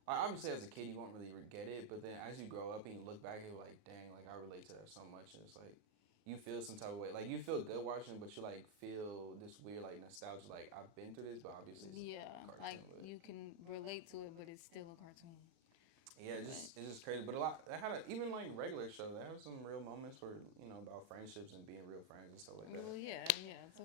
Obviously, as a kid, you won't really get it. But then as you grow up and you look back, you're like, dang, like I relate to that so much. And it's like, you feel some type of way. Like you feel good watching it, but you like feel this weird like nostalgia. Like I've been through this, but obviously it's a cartoon. Like you can relate to it, but it's still a cartoon. Yeah, it's just crazy. But a lot. They had even like regular show. They have some real moments where about friendships and being real friends and stuff like that. Well, yeah,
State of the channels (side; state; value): left; late; 37 ms